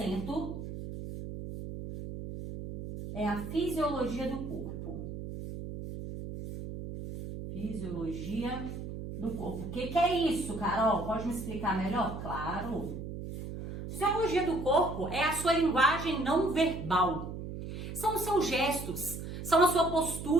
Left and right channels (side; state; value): right; noise; hum, 8 dB below the sound